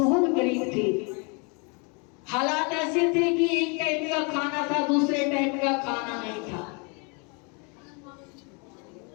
गरीब थी, हालात ऐसे थे कि एक टाइम का खाना था, दूसरे टाइम का खाना नहीं था।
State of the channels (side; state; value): right; quieter; 33.5 dB